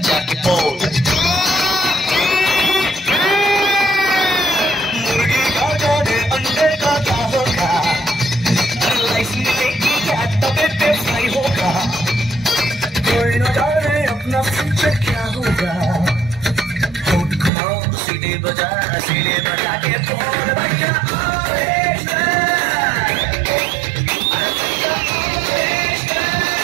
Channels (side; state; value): left; drops out; at 17.5 s